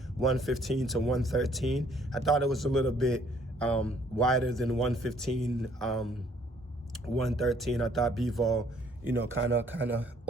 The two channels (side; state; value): both; normal; correlation 0.62